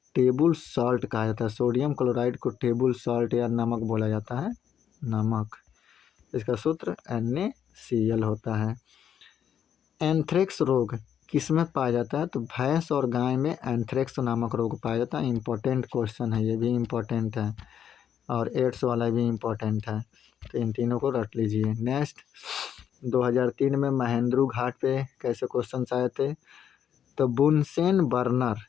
टेबल सॉल्ट कहा जाता है। सोडियम क्लोराइड को टेबल सॉल्ट या नमक बोला जाता है, नमक। इसका सूत्र NaCl होता है। एंथ्रेक्स रोग किसमें पाया जाता है? तो भैंस और गाय में एंथ्रेक्स नामक रोग पाया जाता है। इंपॉर्टेंट क्वेश्चन है, ये भी इम्पोर्टेंट है, और एड्स वाला भी इम्पोर्टेंट है, तो इन तीनों को रट लीजिए। नेक्स्ट, 2003 में महेंद्रू घाट पे कैसे क्वेश्चन आए थे? तो बुनसेन बर्नर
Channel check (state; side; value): quieter; right; 9.0 dB